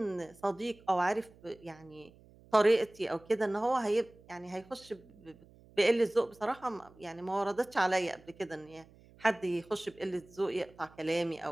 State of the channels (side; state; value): right; noise; hum, 25 dB below the sound